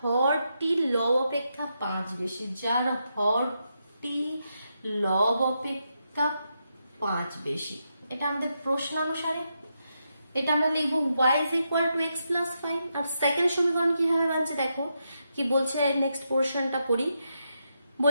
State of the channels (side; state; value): both; inverted; correlation -0.83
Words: লব অপেক্ষা 5 বেশি, যার হরটি লব অপেক্ষা 5 বেশি। এটা আমাদের প্রশ্ন অনুসারে এটা আমরা লিখবো y is equal to x plus 5। আর সেকেন্ড সমীকরণ কিভাবে বানছে দেখো কি বলছে, নেক্সট পোর্শনটা পড়ি।